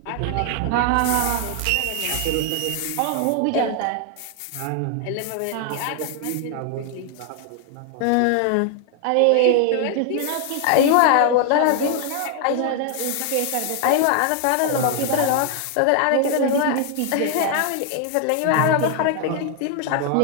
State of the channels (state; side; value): different; both; correlation 0.00